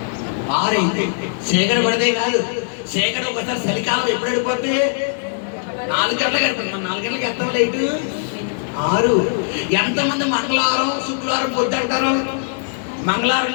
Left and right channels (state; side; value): silent; right; digital silence